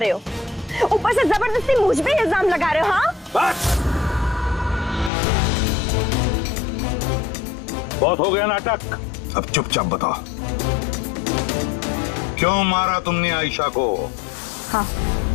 हो, ऊपर से जबरदस्ती मुझ पे इल्जाम लगा रहे हो। हाँ, बस बहुत हो गया नाटक। अब चुपचाप बताओ, क्यों मारा तुमने आयशा को? हाँ,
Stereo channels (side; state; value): right; drops out; at 5.1 s